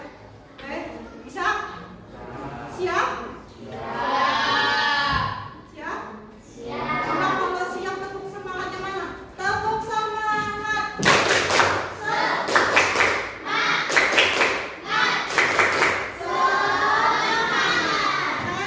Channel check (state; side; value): identical; both; correlation 1.00